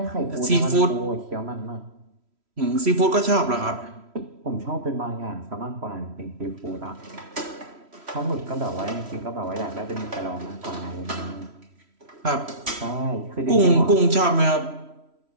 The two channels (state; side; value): late; left; 3.1 ms